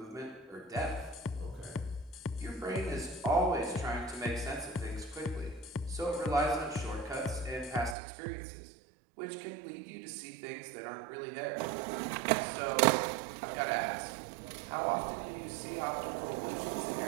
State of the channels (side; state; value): left; drops out; at 8.0 s